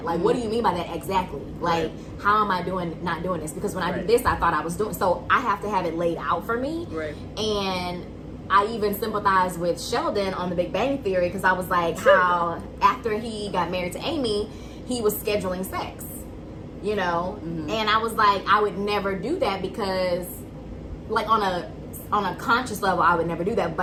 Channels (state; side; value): identical; both; correlation 1.00